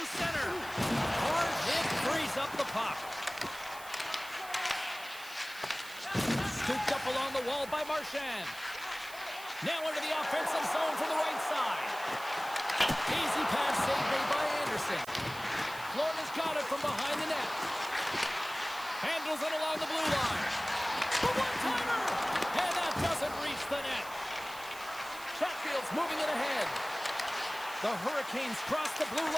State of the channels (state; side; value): noise; right; hiss, 16 dB below the sound